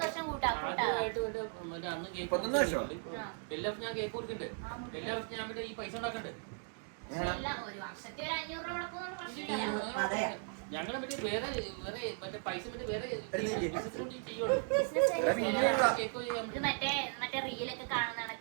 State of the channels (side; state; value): left; silent; 53 dB below the other